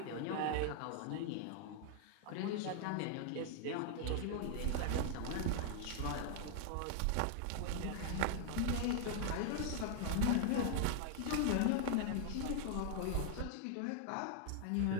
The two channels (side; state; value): both; different; correlation 0.00